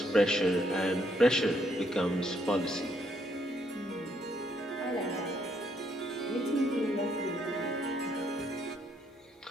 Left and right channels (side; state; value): both; normal; correlation 0.72